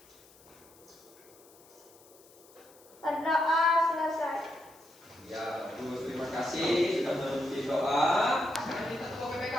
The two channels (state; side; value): noise; left; hiss, 25 dB below the sound